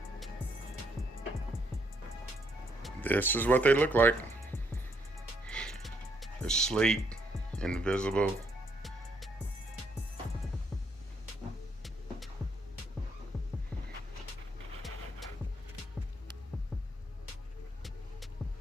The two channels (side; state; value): both; normal; correlation 0.72